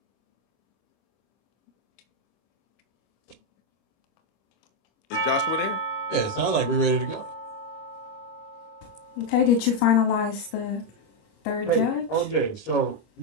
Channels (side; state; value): right; late; 25 ms